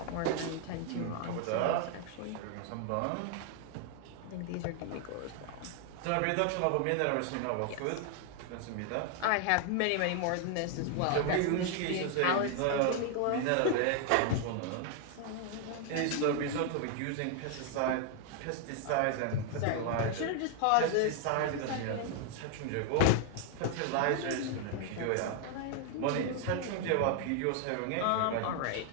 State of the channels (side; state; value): both; different; correlation 0.00